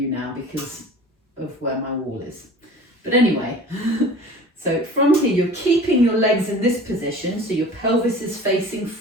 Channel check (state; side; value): normal; both; correlation 0.42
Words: now because of where my wall is. But anyway, so from here, you're keeping your legs in this position, so your pelvis is facing